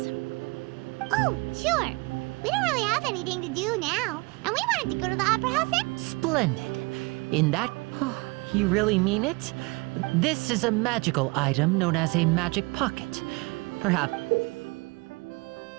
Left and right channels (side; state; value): left; quieter; 26.8 dB